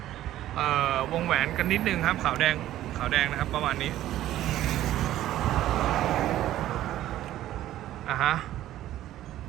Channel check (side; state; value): left; quieter; 13.5 dB